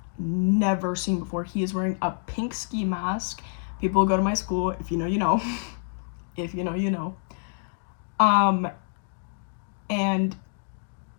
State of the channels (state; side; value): silent; right; digital silence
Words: never seen before. He is wearing a pink ski mask. People who go to my school, if you know, you know. If you know, you know. And